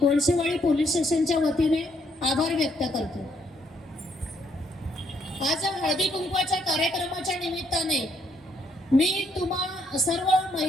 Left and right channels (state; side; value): normal; both; correlation 0.72